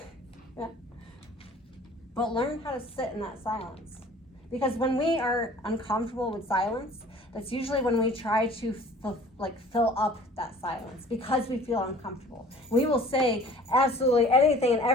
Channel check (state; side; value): normal; both; correlation 0.48